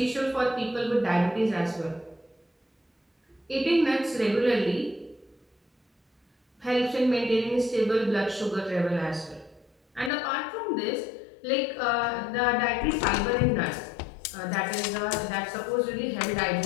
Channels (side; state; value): right; drops out; at 10.1 s